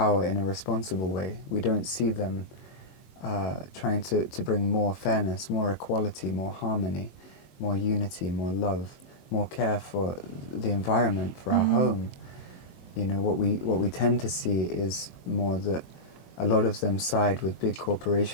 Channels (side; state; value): right; late; 21 ms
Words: in a responsible way. We don't see them trying to bring more fairness, more equality, more harmony, more unity, more love, more care for the environment, for our home. You know, what we tend to see is more that a lot of them side with big